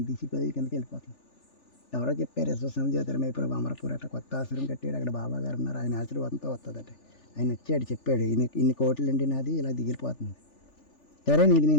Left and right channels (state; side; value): late; right; 3.4 ms